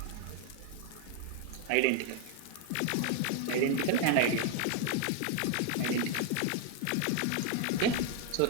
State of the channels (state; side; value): different; both; correlation 0.01